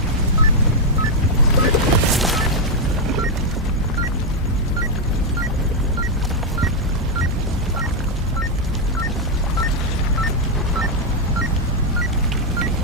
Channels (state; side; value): normal; both; correlation 0.00